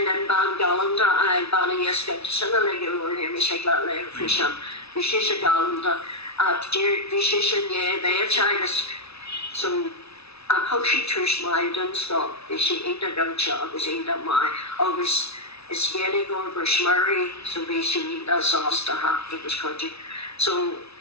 and Ban Galanda, I Banny Esket, Similar or him, Shakla Lay Fishan, Vishisha Galanda, Vishishan, yeah, they are Chinas. So I'm hoping Trish Maiden stop, is she ain't a dumb job, is ain't a my, always it's really going for Shmurray, so basically that's sauce to have to this country. So,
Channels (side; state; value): right; late; 0.79 ms